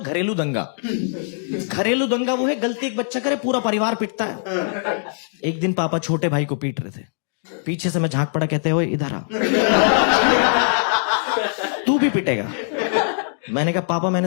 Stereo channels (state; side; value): silent; right; digital silence